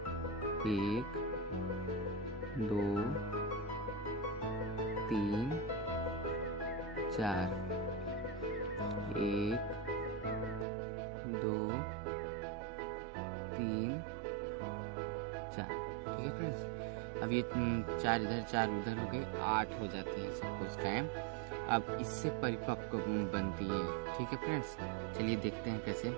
1 2 3 4, 1 2 3 4। ठीक है फ्रेंड्स, अब ये 4 इधर 4 उधर हो गए, 8 हो जाते हैं सब कोशिकाएं। अब इससे परिपक्व बनती है। ठीक है फ्रेंड्स, चलिए देखते हैं कैसे।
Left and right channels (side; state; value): left; drops out; at 10.7 s